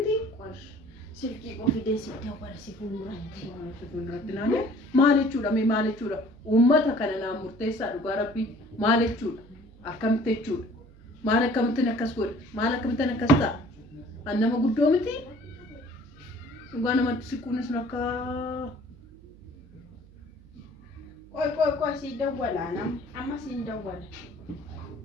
qosh silkii qofidee si dawwala si fuulduratti naannoo maal jechuudha mee maal jechuudha uummata kana naan murteessaa dhugaa rabbii maal jechuudha akkamitti jechuudha maal akkamittiin akkas godhe maal akkamittiin akkas ta'a an nama guddoo miti dhugaa namatti siquunis akka qoy si dawwala amma si dawwala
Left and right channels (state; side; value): noise; right; hum, 23 dB below the sound